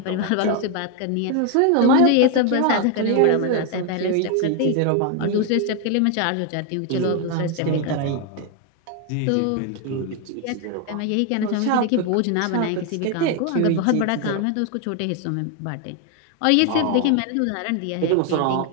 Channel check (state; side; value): different; both; correlation 0.01